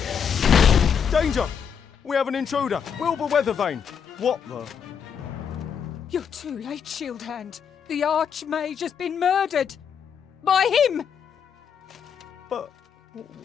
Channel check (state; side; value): quieter; right; 7.4 dB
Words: Danger! We have an intruder! Wilbur Weathervane! What the... You're too late, Shield Hand. The Archmage has been murdered. By him! But...